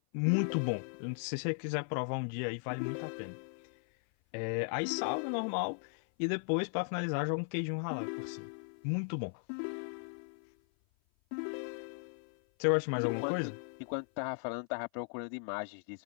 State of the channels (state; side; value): silent; right; 53 dB below the other